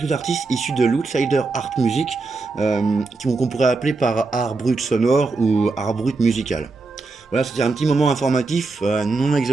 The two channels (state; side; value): quieter; left; 3.8 dB